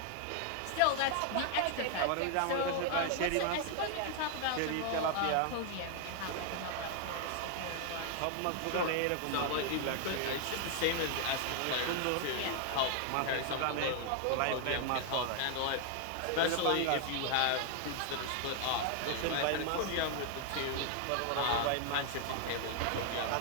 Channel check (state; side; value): different; both; correlation 0.00